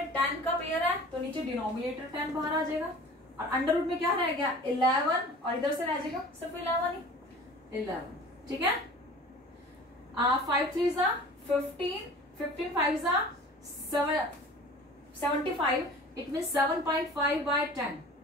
10 का पेयर है तो नीचे डिनोमिनेटर 10 बाहर आ जाएगा और अंडर रूट में क्या रह गया? 11 और इधर से रह जाएगा सिर्फ 11 ही 11. ठीक है? 5 3 जा 15, 15 5 जा 75. It mean 7.5 by 10.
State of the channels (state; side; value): normal; both; correlation 0.42